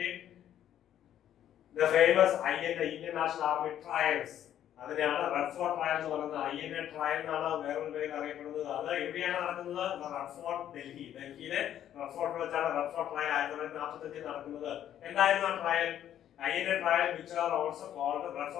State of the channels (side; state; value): right; quieter; 10.9 dB